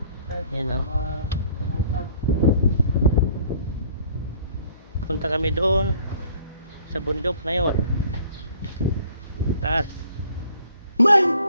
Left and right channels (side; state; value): both; inverted; correlation -0.56